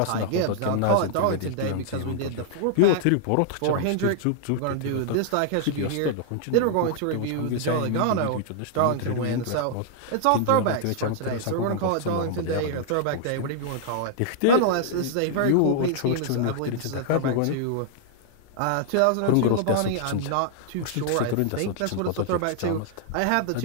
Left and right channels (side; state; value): both; different; correlation -0.01